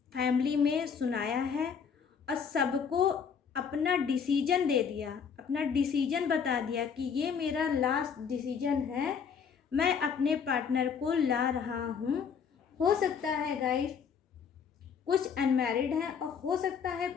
फैमिली में सुनाया है और सबको अपना डिसीजन दे दिया, अपना डिसीजन बता दिया कि ये मेरा लास्ट डिसीजन है, मैं अपने पार्टनर को ला रहा हूँ। हो सकता है गाइस कुछ अनमैरिड हैं और हो सकता है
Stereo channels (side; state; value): right; quieter; 6.7 dB